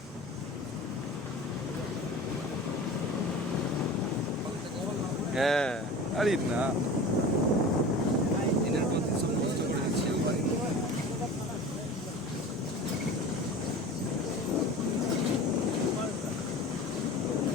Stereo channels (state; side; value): normal; both; correlation 0.36